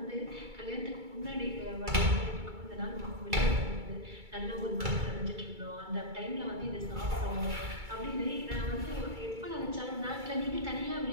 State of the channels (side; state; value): left; late; 2.3 ms